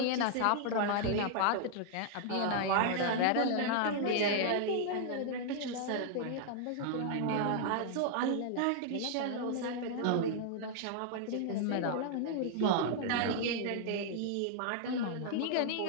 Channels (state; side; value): different; both; correlation -0.01